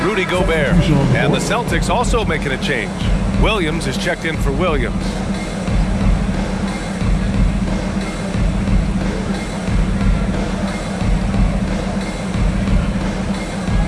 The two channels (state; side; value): identical; both; correlation 1.00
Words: Rudy Gobert. And the Celtics also making a change. Williams is checked in for Williams.